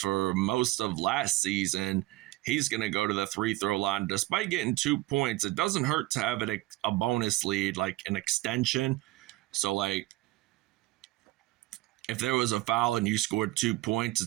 most of last season, he's going to go to the free-throw line. Despite getting 2 points, it doesn't hurt to have a bonus lead, like an extension. So, like, if there was a foul and you scored 2 points,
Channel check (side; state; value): left; quieter; 18.1 dB